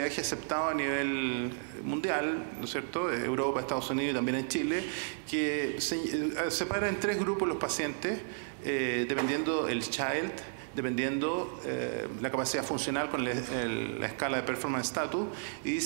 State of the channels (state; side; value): silent; left; digital silence